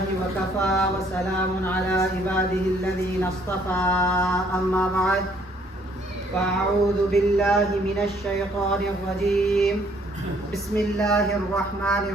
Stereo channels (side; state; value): both; normal; correlation 0.64